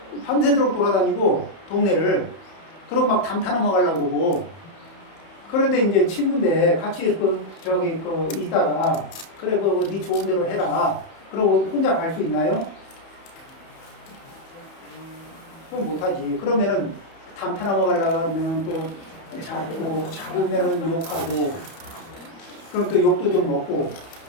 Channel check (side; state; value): right; late; 31 ms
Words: 밤새도록 돌아다니고 동네를 그러고 막 담타 넘어가려고 그러고 그런데 이제 친구인데 같이 있다가 그래 네 좋은 대로 해라 그러고 혼자 갈 수 있나요? 그럼 못하지. 그러면은 담타 넘어가려고 하면 또 잡으면은 욕하고 그럼 또 욕도 좀 먹고